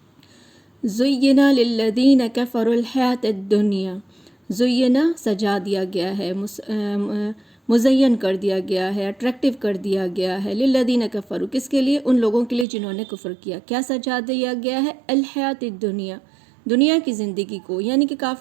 زینا للذین کفروا الحیاۃ الدنیا، زینا سجا دیا گیا ہے، مزین کر دیا گیا ہے، اٹریکٹیو کر دیا گیا ہے، للذین کفروا، کس کے لیے؟ ان لوگوں کے لیے جنہوں نے کفر کیا۔ کیا سجا دیا گیا ہے؟ الحیاۃ الدنیا، دنیا کی زندگی کو، یعنی کہ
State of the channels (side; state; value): left; drops out; at 12.7 s